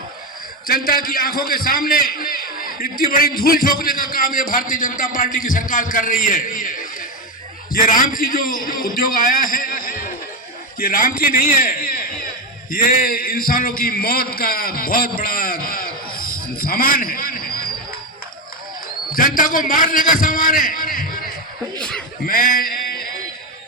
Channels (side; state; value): both; normal; correlation 0.11